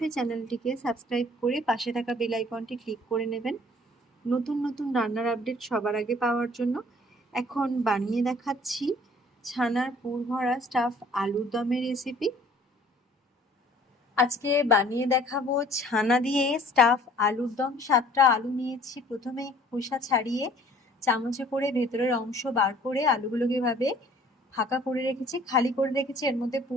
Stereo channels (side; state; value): both; normal; correlation 0.54